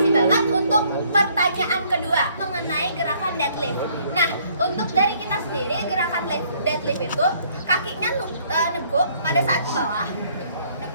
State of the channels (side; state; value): both; inverted; correlation -0.63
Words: banget untuk pertanyaan kedua mengenai gerakan deadlift. Nah, untuk dari kita sendiri gerakan deadlift itu kakinya neguk pada saat ke bawah,